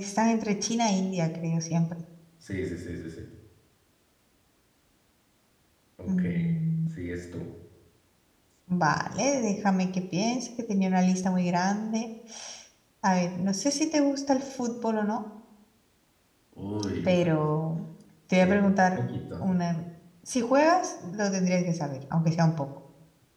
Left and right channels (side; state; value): both; identical; correlation 1.00